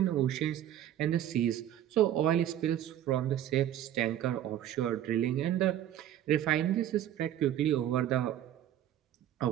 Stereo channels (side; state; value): left; quieter; 11.5 dB